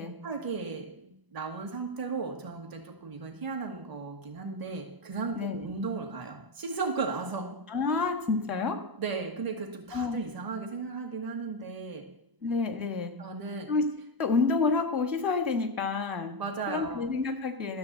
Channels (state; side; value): late; left; 1.0 ms